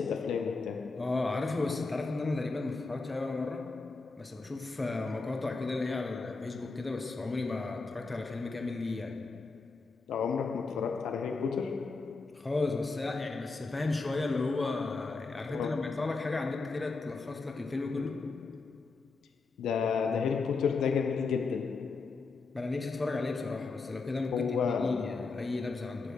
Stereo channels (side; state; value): right; quieter; 4.1 dB